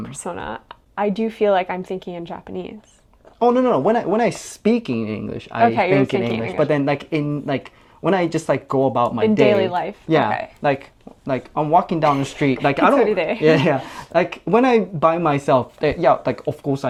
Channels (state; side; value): identical; both; correlation 1.00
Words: persona, I do feel like I'm thinking in Japanese. Oh no! When I speak in English, I think in English. But then like when I just like go about my day in daily life, like I'm walking down the street, like I don't, like when I by myself, like of course